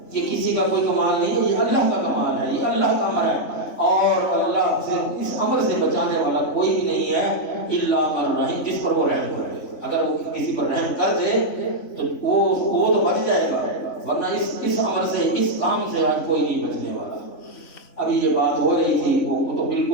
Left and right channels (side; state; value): right; late; 3.5 ms